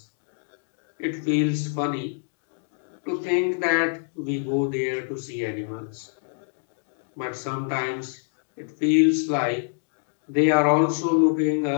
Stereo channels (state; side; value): silent; right; digital silence